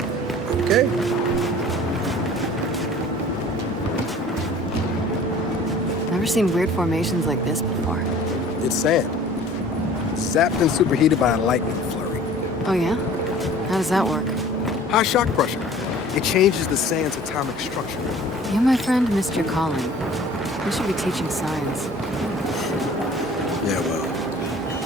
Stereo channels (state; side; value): normal; both; correlation 0.47